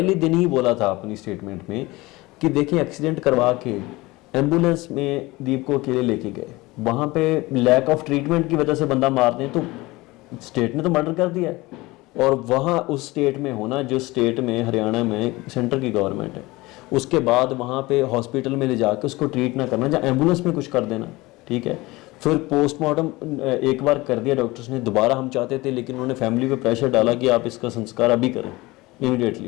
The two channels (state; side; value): quieter; right; 21.1 dB